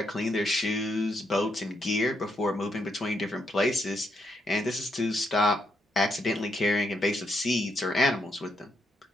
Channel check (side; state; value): both; normal; correlation 0.78